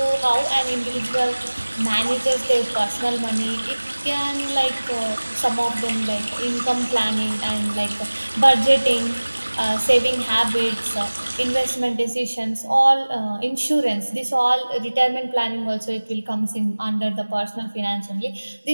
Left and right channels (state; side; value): inverted; both; correlation -1.00